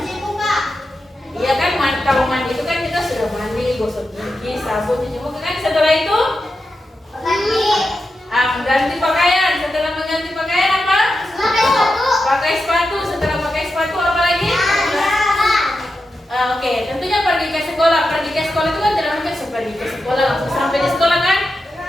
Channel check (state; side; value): normal; both; correlation 0.89